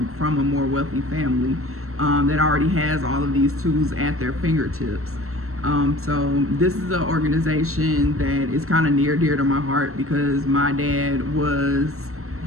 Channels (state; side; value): late; left; 0.63 ms